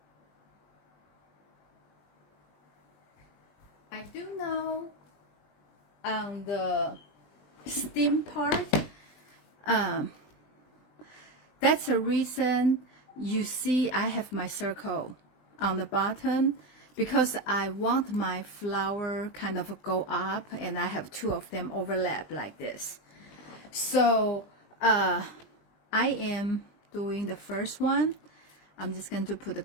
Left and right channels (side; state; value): right; late; 20 ms